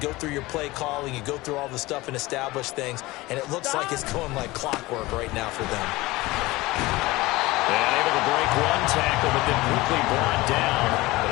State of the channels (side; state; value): right; quieter; 20.2 dB